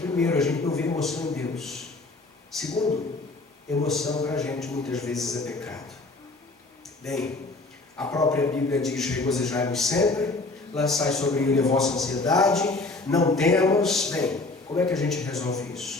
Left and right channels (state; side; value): quieter; right; 3.3 dB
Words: a gente não vê emoção em Deus. Segundo, emoção para a gente muitas vezes é pecado. Bem, a própria Bíblia diz: regozijai-vos sempre, lançai sobre ele a vossa ansiedade, não temos. Bem, como é que a gente resolve